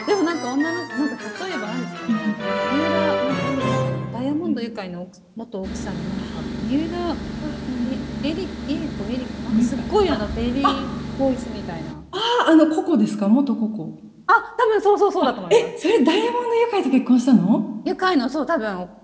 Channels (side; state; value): both; identical; correlation 1.00